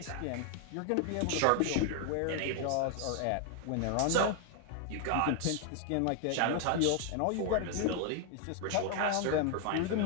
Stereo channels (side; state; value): both; different; correlation 0.00